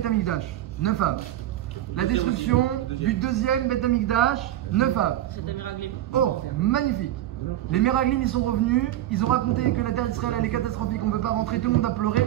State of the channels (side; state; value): left; quieter; 13.4 dB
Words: Amikdash, 9 Av. La destruction du deuxième Beth Amikdash, 9 Av. Oh, magnifique. Les Meraglim, ils sont revenus, ils ont raconté que la terre d'Israël elle est catastrophique, on ne peut pas rentrer, tout le monde a pleuré